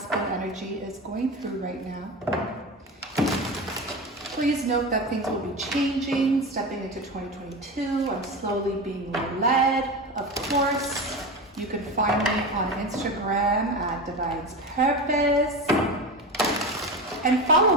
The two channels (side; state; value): both; normal; correlation 0.24